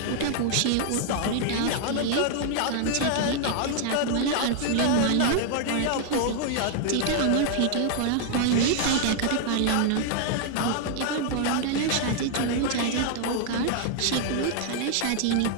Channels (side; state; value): both; different; correlation 0.00